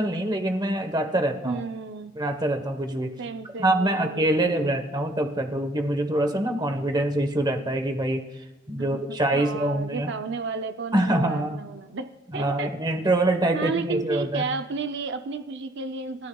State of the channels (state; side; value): normal; both; correlation 0.62